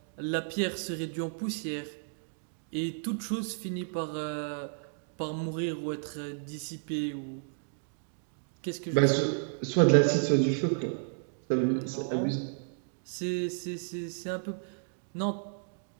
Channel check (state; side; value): silent; left; digital silence